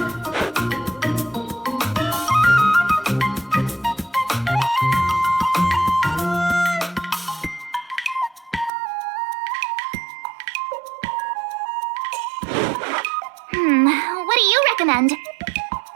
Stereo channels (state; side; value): drops out; left; at 8.7 s